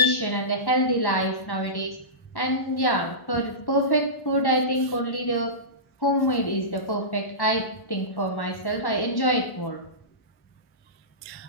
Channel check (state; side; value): late; right; 1.1 ms